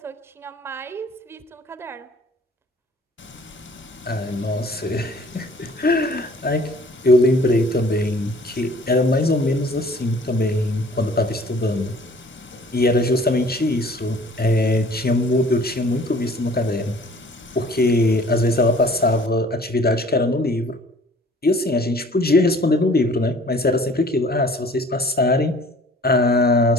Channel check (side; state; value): both; normal; correlation 0.52